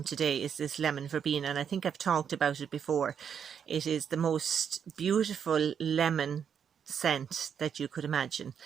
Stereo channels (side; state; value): left; quieter; 7.7 dB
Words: today is this lemon verbena, and I think I've talked about it before. It is the most beautiful lemon scent that you could imagine,